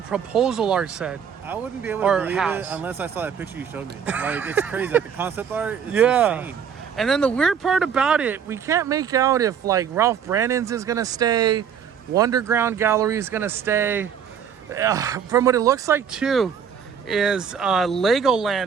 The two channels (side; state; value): left; quieter; 7.7 dB